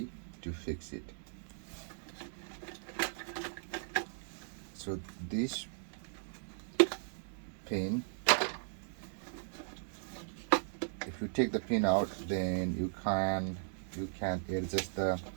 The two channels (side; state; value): left; silent; digital silence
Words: to fix it. So this pin, if you take the pin out, then you can adjust the